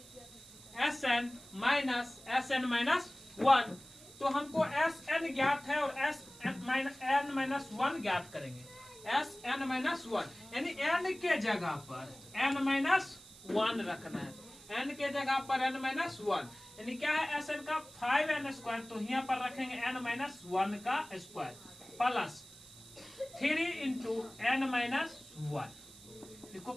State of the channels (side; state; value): right; noise; hiss, 20 dB below the sound